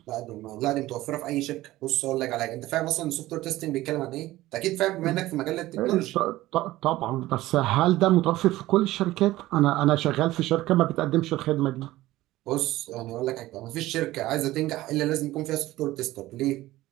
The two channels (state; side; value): quieter; left; 16.8 dB